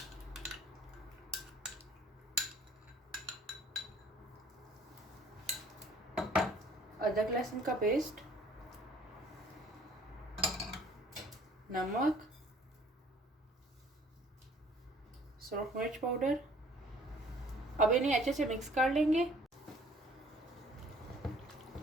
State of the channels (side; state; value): both; normal; correlation 0.55